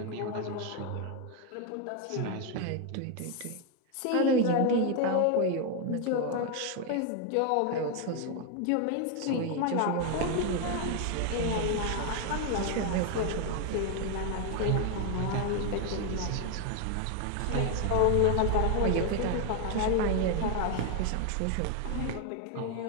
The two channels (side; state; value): both; different; correlation 0.01